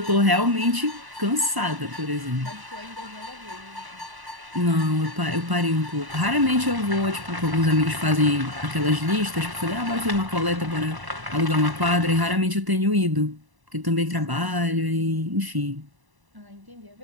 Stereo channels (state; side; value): late; left; 1.0 ms